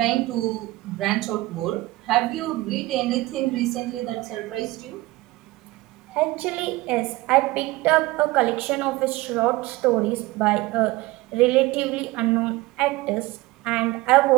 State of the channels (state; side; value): quieter; left; 19.8 dB